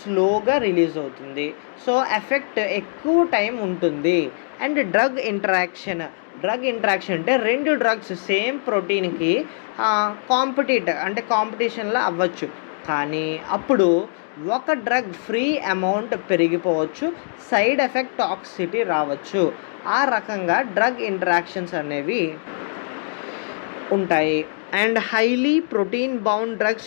రిలీజ్ అవుతుంది, సో ఎఫెక్ట్ ఎక్కువ టైం ఉంటుంది. అండ్ డ్రగ్ ఇంటరాక్షన్ అంటే 2 డ్రగ్స్ సేమ్ ప్రోటీన్కి కాంపిటీషన్లో అవ్వచ్చు, కానీ అప్పుడు ఒక డ్రగ్ ఫ్రీ అమౌంట్ పెరిగిపోవచ్చు, సైడ్ ఎఫెక్ట్ టాక్సిసిటీ రావచ్చు. ఆ రకంగా డ్రగ్ ఇంటరాక్షన్స్ అనేవి ఉంటాయి. And highly protein bound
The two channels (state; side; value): silent; right; digital silence